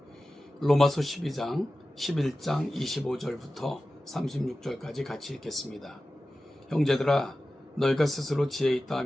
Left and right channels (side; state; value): both; normal; correlation 0.95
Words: 로마서 12장 11장 25절부터 36절까지 같이 읽겠습니다. 형제들아, 너희가 스스로 지혜 있다